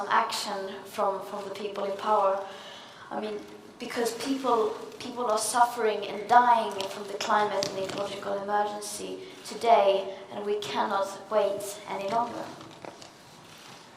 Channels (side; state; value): both; identical; correlation 1.00